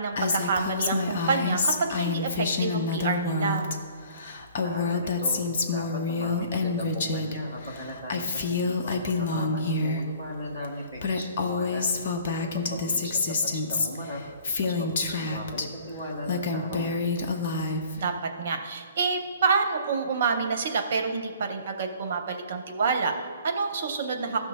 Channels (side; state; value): both; inverted; correlation -0.51